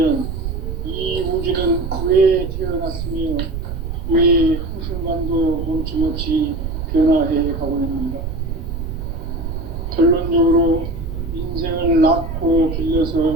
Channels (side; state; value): right; noise; rumble, 5 dB below the sound